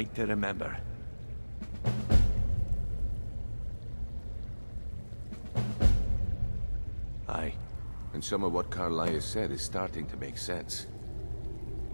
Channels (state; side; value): inverted; both; correlation -1.00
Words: to remember. Aye, and some of what Karliah said is starting to make sense.